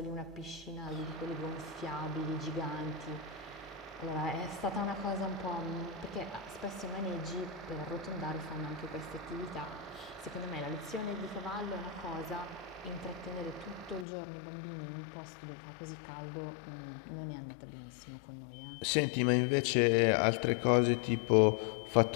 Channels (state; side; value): drops out; right; at 14.1 s